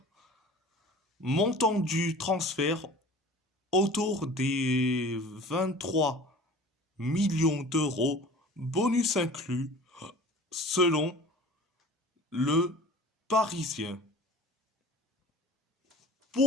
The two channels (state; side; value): normal; both; correlation 0.42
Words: Montant du transfert autour des 23 millions d'euros, bonus inclus, selon le Parisien.